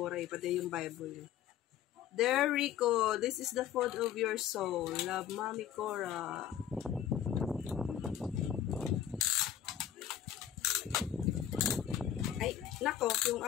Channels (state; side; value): quieter; right; 10.4 dB